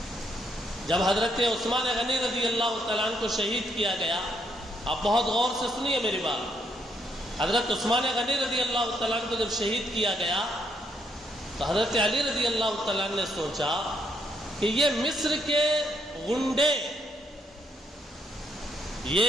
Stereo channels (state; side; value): normal; both; correlation 0.74